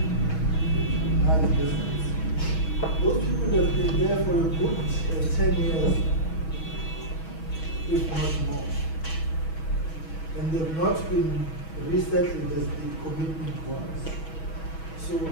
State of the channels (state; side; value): late; right; 6.2 ms